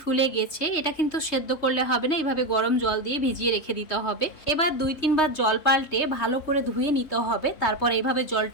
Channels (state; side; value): late; right; 3.2 ms